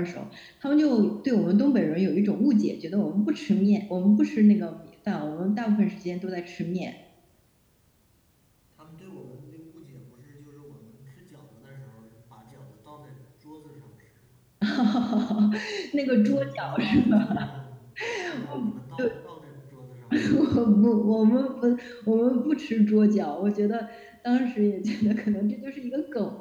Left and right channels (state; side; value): identical; both; correlation 1.00